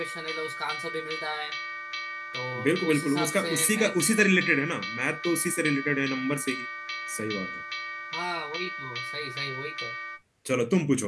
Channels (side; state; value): both; identical; correlation 1.00